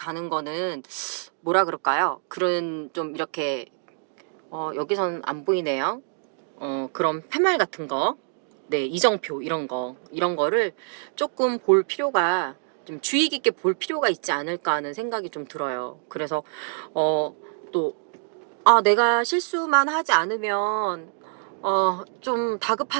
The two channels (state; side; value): silent; left; digital silence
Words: 거는 뭐라 그럴까요? 그런 좀 이렇게 여기선 안 보이네요. 그런 팻말 같은 거, 네, 이정표 이런 거를 조금 볼 필요가, 좀 주의 깊게 볼 필요가 있지 않을까 하는 생각이 좀 들어요. 그래서 또 내가 실수만 하지 않으면 좀